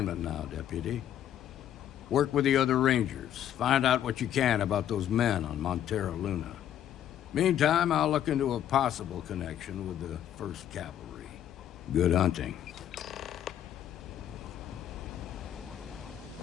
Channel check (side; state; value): right; quieter; 10.7 dB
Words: now, Deputy. Work with the other Rangers. Find out what you can about those men on Montera Luna. Meantime, I'll look into a possible connection with the 1st Cavalry. Good hunting.